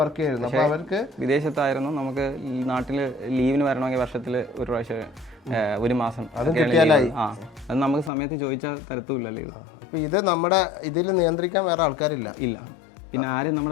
വർക്ക് ചെയ്യായിരുന്നു. അപ്പോൾ അവർക്ക് വിദേശത്തായിരുന്നു. നമുക്ക് നാട്ടിൽ ലീവിന് വരണമെങ്കിൽ വർഷത്തിൽ ഒരു പ്രാവശ്യം 1 മാസം അത് കിട്ടിയാലായി. അത് നമുക്ക് സമയത്ത് ചോദിച്ചാൽ തരത്തുമില്ല ലീവ്. അപ്പോൾ ഇത് നമ്മുടെ ഇതിൽ നിയന്ത്രിക്കാൻ വേറെ ആൾക്കാരില്ല. ഇല്ല, പിന്നെ ആരും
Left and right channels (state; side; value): drops out; right; at 8.1 s